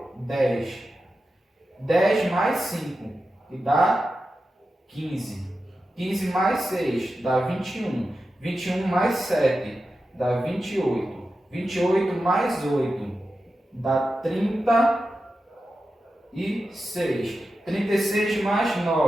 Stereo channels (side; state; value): both; normal; correlation 0.91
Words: 10. 10 mais 5, que dá 15. 15 mais 6 dá 21. 21 mais 7 dá 28. 28 mais 8 dá 36. 36 mais